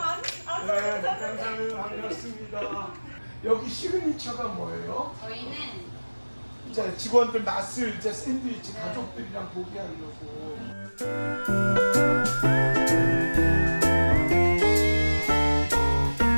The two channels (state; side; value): inverted; both; correlation -1.00